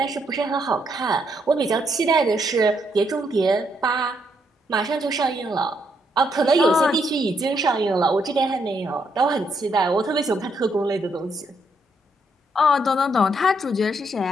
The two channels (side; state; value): both; normal; correlation 0.75